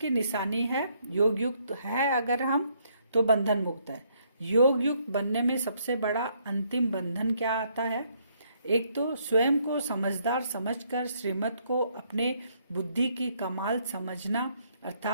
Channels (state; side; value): inverted; both; correlation -0.70